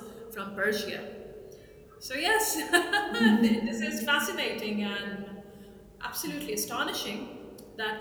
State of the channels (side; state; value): both; identical; correlation 1.00